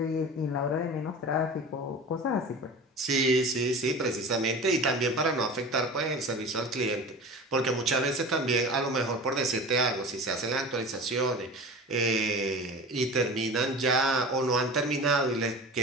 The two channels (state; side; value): normal; both; correlation 0.35